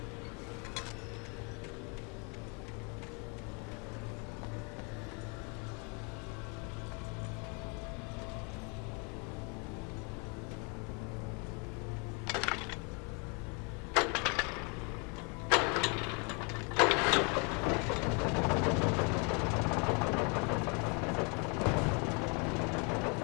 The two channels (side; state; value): right; quieter; 34.0 dB